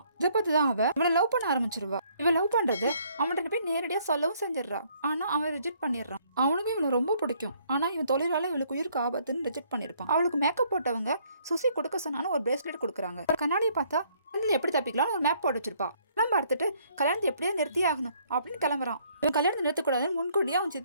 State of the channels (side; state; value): both; inverted; correlation -0.65